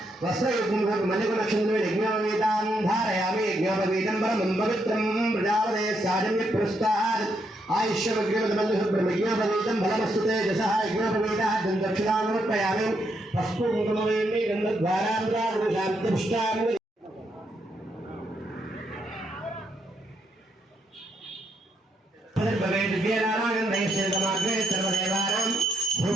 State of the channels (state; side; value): normal; both; correlation 0.78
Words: वस्त्रयुग्मं मल्लिकनक्षत्रं यज्ञोपवीतां धारयामि यज्ञोपवीतं परमं पवित्रं प्रजापते साजन्य पुरस्तात् आयुष्यमग्निमदबन्धुब्रह्मज्ञोपवीतं फलमस्तुते यशः यज्ञोपवीतः दक्षिणां समर्पयामि पस्पुकुङ्कुमवेण्ये गन्धद्वारान्ध्रागुणशान्तिपुष्टां